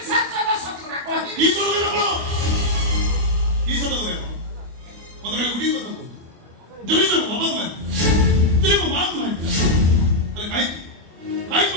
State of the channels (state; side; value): late; left; 25 ms